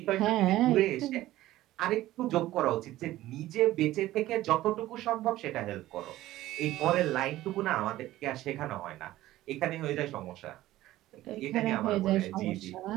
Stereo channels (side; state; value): left; quieter; 15.5 dB